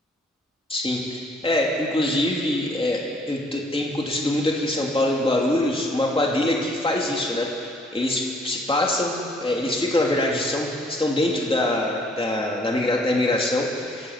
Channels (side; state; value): both; normal; correlation 0.62